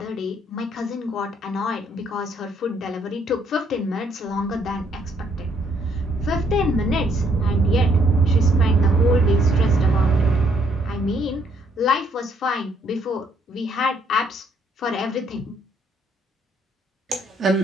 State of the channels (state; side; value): normal; both; correlation 0.68